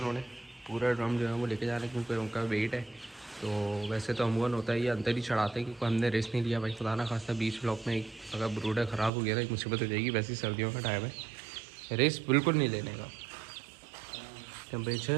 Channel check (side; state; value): left; drops out; at 9.1 s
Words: पूरा ड्रम जो है वो लेके जा रहे हैं क्योंकि उनका वेट है। तो वैसे तो अमूमन होता है ये अंदर ही चढ़ाते हैं, क्योंकि हमने रेस्ट नहीं लिया भाई, खुदा ना खास्ता बीच ब्लॉक में अगर ब्रूडर ख़राब हो गया ना एक मुसीबत हो जाएगी। वैसे ही सर्दियों का टाइम है, रेस्ट बिल्कुल नहीं लेने का।